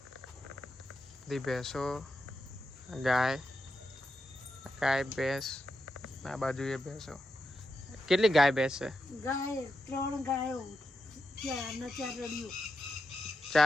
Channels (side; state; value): both; normal; correlation 0.87